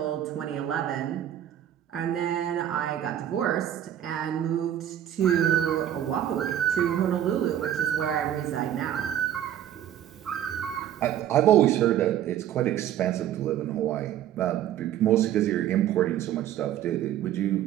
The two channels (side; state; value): left; quieter; 11.1 dB